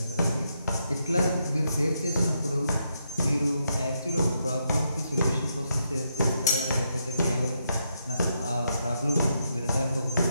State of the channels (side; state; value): both; inverted; correlation -0.80